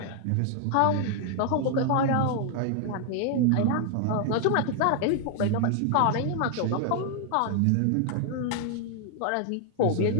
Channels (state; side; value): different; both; correlation 0.00